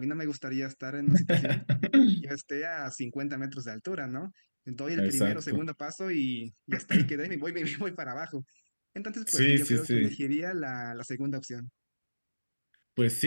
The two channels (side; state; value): both; inverted; correlation -1.00